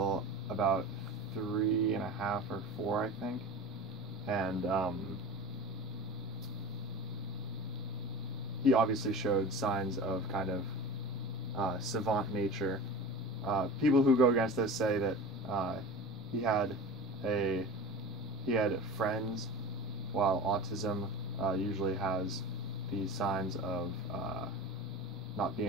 about 3.5 or 4, I think. And he obviously showed signs of kind of savant nature. People who go against this say that he had friends, while autism usually has the signs of not being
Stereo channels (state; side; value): normal; both; correlation 0.32